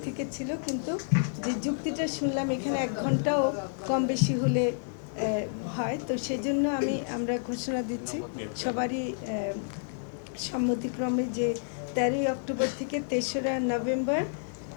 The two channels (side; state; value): right; silent; digital silence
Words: থেকে ছিল, কিন্তু যে যুক্তিটা শুনলাম এখানে 1 ঘন্টাও কম বেশি হলে হয়, তো সেজন্য আমরা ঘোষণা দিচ্ছি সবারই সম্মতিক্রমে যে 13ই অক্টোবর থেকে 3রা নভেম্বর